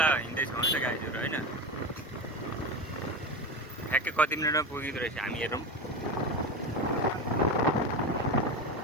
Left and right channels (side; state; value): both; normal; correlation 0.22